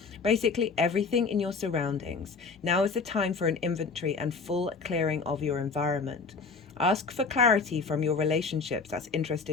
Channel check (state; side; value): quieter; right; 4.7 dB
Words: Basically, everything in your surroundings. Now is the time for an inventory and full clearing of your environment. Ask for clarity from your relationships. That's